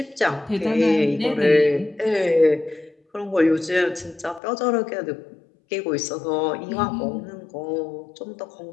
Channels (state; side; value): drops out; right; at 4.4 s